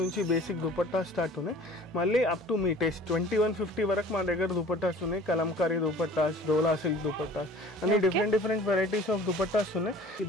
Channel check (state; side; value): normal; both; correlation 0.47